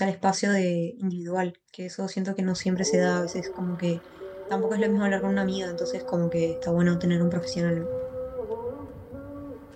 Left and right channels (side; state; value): both; identical; correlation 1.00